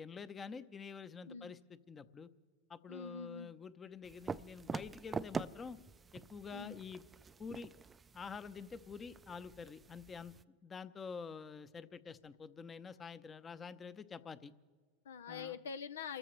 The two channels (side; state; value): both; normal; correlation 0.57